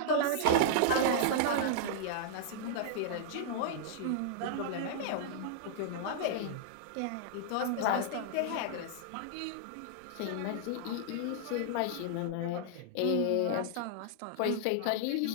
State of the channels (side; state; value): both; different; correlation -0.01